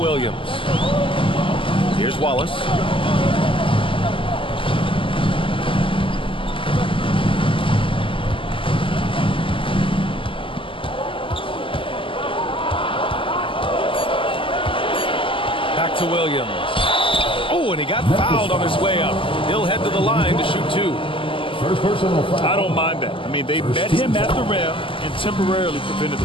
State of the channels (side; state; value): right; late; 0.25 ms